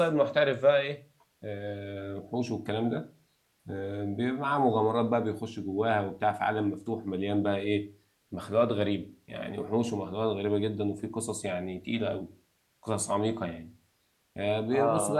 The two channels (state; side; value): identical; both; correlation 1.00